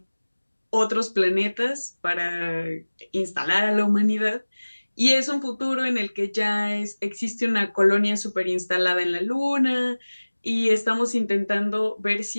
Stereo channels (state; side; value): inverted; both; correlation -1.00